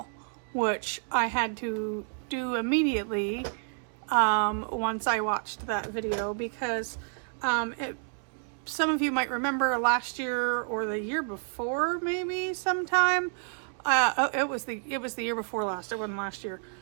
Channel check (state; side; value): silent; left; 58 dB below the other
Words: which I had to do immediately once I watched that video, because some of you might remember last year or the year before, maybe sometime. It was the year before last. It wasn't last year.